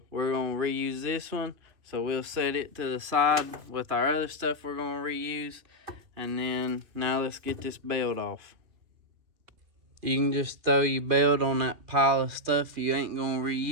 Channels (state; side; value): late; left; 2.6 ms